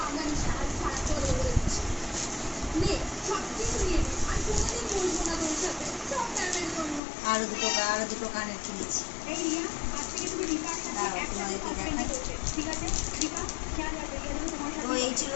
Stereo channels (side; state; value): right; drops out; at 7.0 s